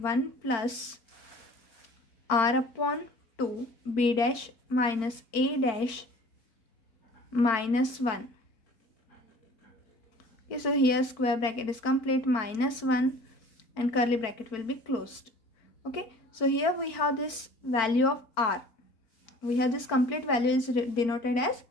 plus r upon 2 b dash minus a dash minus 1. Okay, so here square bracket is complete, minus 1 and curly bracket will be closed. Okay, so here we have this value of R. We have this complete value is denoted as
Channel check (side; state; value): right; late; 4.4 ms